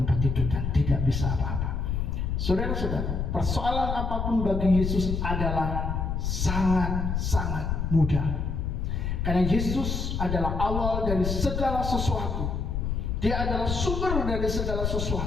tidur dan tidak bisa apa-apa. Saudara-saudara, persoalan apapun bagi Yesus adalah sangat-sangat mudah, karena Yesus adalah awal dari segala sesuatu. Dia adalah sumber dari segala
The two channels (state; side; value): noise; left; rumble, 1 dB below the sound